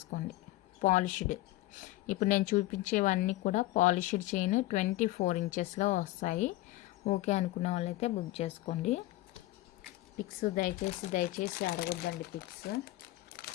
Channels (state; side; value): quieter; right; 17.5 dB